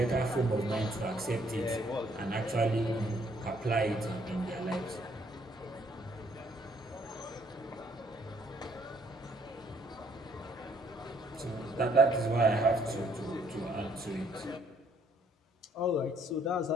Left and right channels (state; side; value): normal; both; correlation 0.66